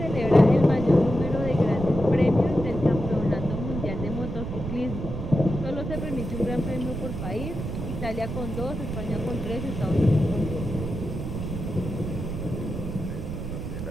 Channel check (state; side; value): noise; right; rumble, 5 dB below the sound